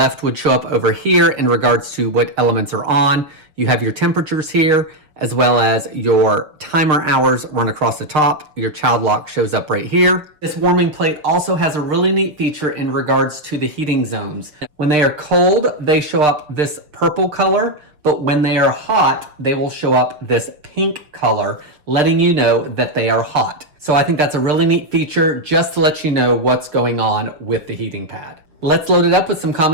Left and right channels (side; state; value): left; late; 6.5 ms